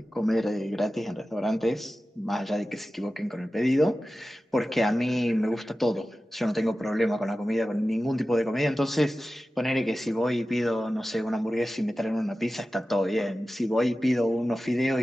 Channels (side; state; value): both; normal; correlation 0.94